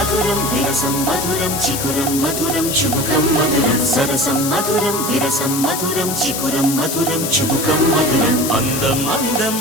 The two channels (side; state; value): left; noise; hiss, 4 dB below the sound